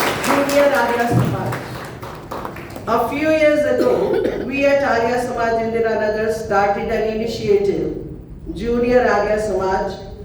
Junior Arya Samaj. A few years ago, we at Arya Samaj Indiranagar started an initiative, Junior Arya Samaj,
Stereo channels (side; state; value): both; identical; correlation 1.00